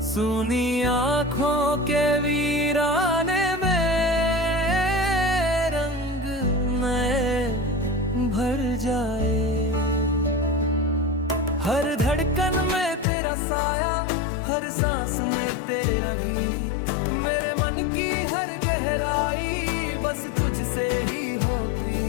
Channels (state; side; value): drops out; right; at 13.1 s